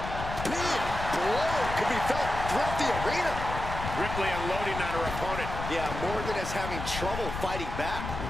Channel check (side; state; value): left; noise; rumble, 7 dB below the sound